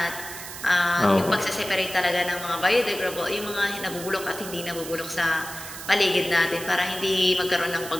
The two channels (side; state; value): right; noise; hiss, 11 dB below the sound